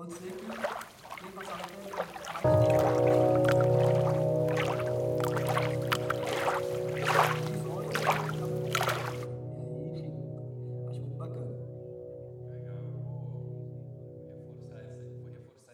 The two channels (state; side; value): identical; both; correlation 1.00